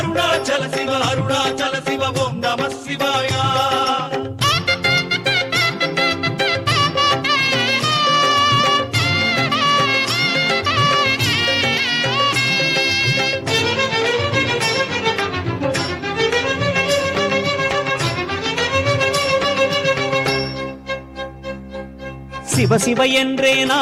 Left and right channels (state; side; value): identical; both; correlation 1.00